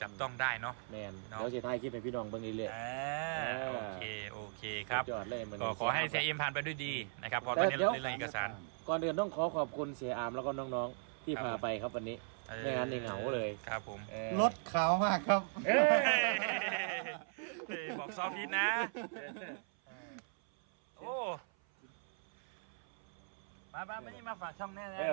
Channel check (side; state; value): left; silent; 52 dB below the other